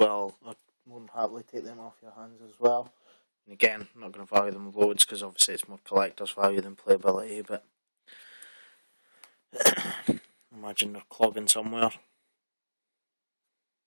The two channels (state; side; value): inverted; both; correlation -1.00